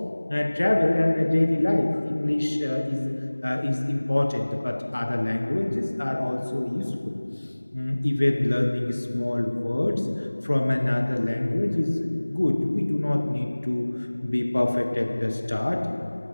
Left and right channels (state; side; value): inverted; both; correlation -1.00